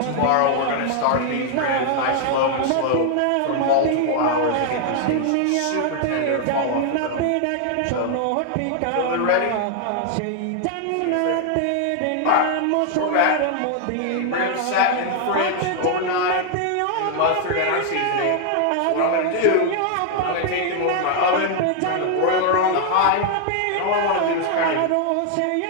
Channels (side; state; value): both; different; correlation 0.00